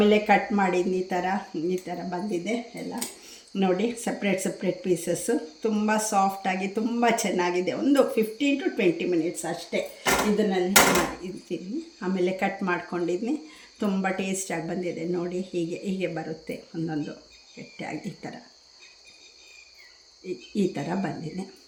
ಕಟ್ ಮಾಡಿದ್ನಿ ಈ ಥರ ಬಂದಿದೆ ಎಲ್ಲ ನೋಡಿ, ಸಪ್ರೇಟ್ ಪೀಸಸ್ಸು ತುಂಬ ಸಾಫ್ಟಾಗಿ ತುಂಬ ಚೆನ್ನಾಗಿದೆ. ಒಂದು 15 to 20 ಮಿನಿಟ್ಸ್ ಅಷ್ಟೇ ಇದನ್ನಲ್ಲಿ ಇಡ್ತೀನಿ. ಆಮೇಲೆ ಕಟ್ ಮಾಡ್ಕೊಂಡಿದ್ನಿ, ತುಂಬ ಟೇಸ್ಟಾಗಿ ಬಂದಿದೆ ನೋಡಿ. ಹೀಗೆ ಬರುತ್ತೆ ಒಂದೊಂದು ಗಟ್ಟಿಯಾಗಿ ಈ ಥರ ಬಂದಿದೆ.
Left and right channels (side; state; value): both; identical; correlation 1.00